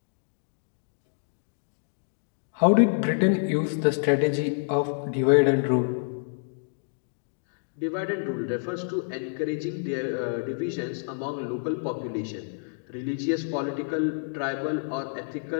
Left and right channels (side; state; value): right; silent; digital silence